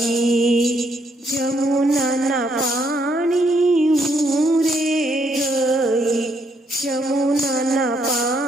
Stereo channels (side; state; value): both; normal; correlation 0.73